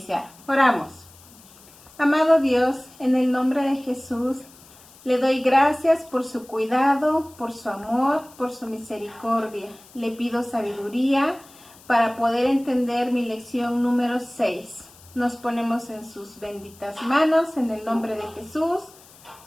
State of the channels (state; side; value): noise; left; hiss, 24 dB below the sound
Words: Oramos. Amado Dios, en el nombre de Jesús, le doy gracias por su cuidado, por su amor, por su misericordia. Le pido sabiduría para poder entender mi lección número 6. Nos ponemos en sus benditas manos, en el nombre de Jesús.